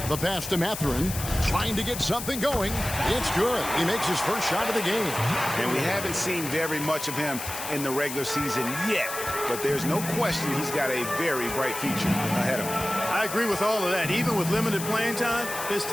The pass to Mathurin. Trying to get something going. It's good. He makes his first shot of the game. And we haven't seen very much of him in the regular season yet. But there's no question he's got a very bright future ahead of him. I agree with all of that. Even with limited playing time, his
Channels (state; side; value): noise; left; hiss, 7 dB below the sound